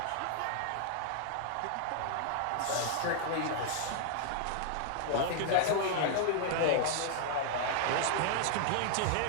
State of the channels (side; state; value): both; different; correlation -0.01